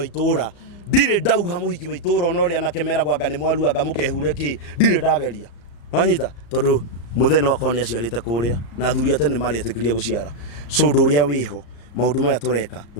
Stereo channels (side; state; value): right; late; 34 ms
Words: itura ndire ndauha muhiki wa itura ona uri anake meragwa anga ni mwaru anga mukehure ki ndire ndageria wanyita tondu mutheno wakwa ni aciarite kuria na thuri atene mari atikiria guciara so nduria wiho maundu maya tureka